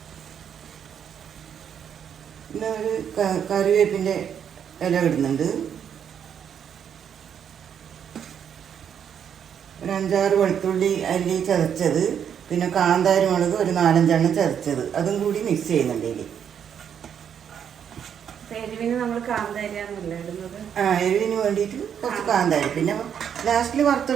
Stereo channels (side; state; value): left; quieter; 8.3 dB